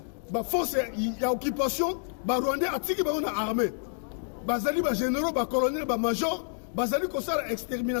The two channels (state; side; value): silent; right; digital silence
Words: ba force ya occupation ba Rwandais atiki bango na armée bazali ba généraux ba colonels ba major bazali kosala